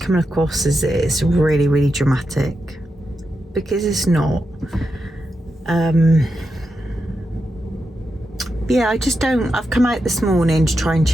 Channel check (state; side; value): normal; both; correlation 0.87